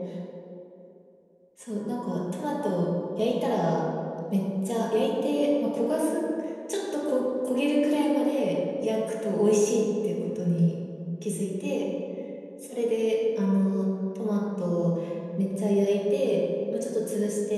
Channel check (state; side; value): identical; both; correlation 1.00